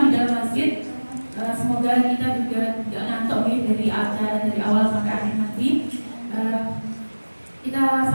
di dalam masjid. Semoga kita juga tidak ngantuk ya dari acara dari awal sampai akhir nanti. Kita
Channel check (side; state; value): both; inverted; correlation -1.00